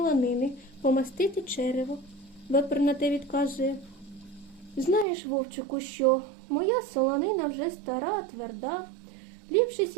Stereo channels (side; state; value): left; drops out; at 5.1 s